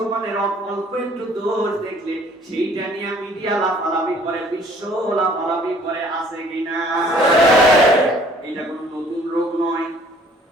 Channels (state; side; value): normal; both; correlation 0.56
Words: অল্প একটু দোষ দেখলে সেইটা নিয়ে মিডিয়া লাফালাফি করে, বিশ্ব লাফালাফি করে, আছে কিনা? এটা কোনো নতুন রোগ নয়।